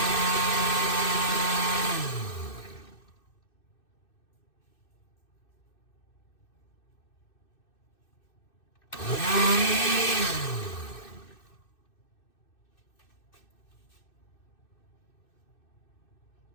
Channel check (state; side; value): late; right; 2.6 ms